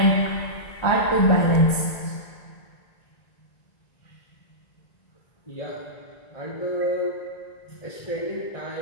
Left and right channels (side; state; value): right; late; 1.9 ms